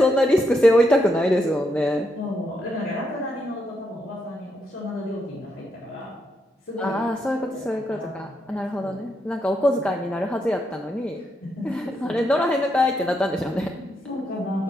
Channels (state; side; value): normal; both; correlation 0.80